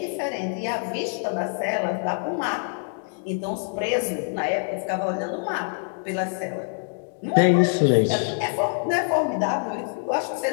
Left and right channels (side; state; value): right; silent; 62 dB below the other